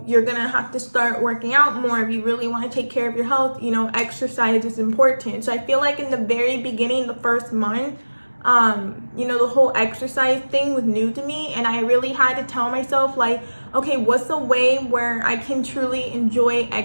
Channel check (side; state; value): both; inverted; correlation -1.00